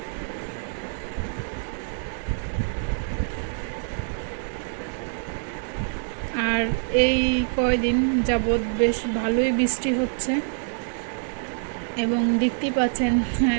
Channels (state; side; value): silent; left; digital silence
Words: আর এই কয়দিন যাবৎ বেশ ভালোই বৃষ্টি হচ্ছে এবং দেখতেই পাচ্ছেন